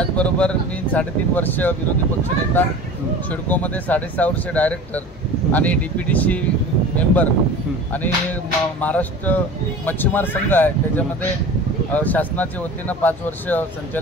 मी 3.5 वर्ष विरोधी पक्षनेता, सिडकोमध्ये 6.5 वर्ष डायरेक्टर आणि DPTC मेंबर आणि महाराष्ट्र मच्छीमार संघ आहे, त्याच्यामध्ये शासनाच्या वतीनं 5 वर्ष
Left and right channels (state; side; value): normal; both; correlation 0.37